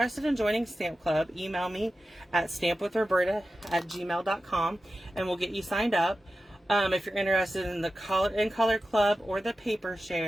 in joining Stamp Club, email me at stampwithroberta@gmail.com and we'll get you signed up. If you're interested in the color club or the paper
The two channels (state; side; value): normal; both; correlation 0.93